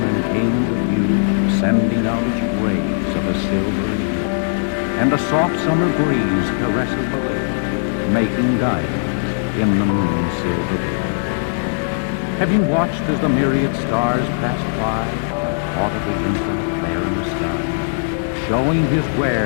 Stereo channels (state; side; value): silent; right; digital silence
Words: came into view, sending out its rays of a silvery hue, and a soft summer breeze caresses the lake, making diamonds in the moon's silver veil? Have you watched as the myriad stars passed by and thought of the infinite there in the sky, showing his